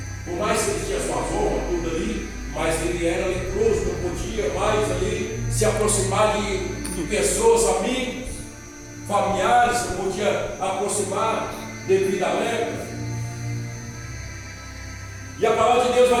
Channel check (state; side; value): identical; both; correlation 1.00